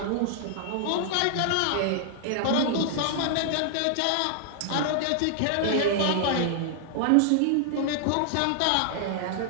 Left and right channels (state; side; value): different; both; correlation -0.01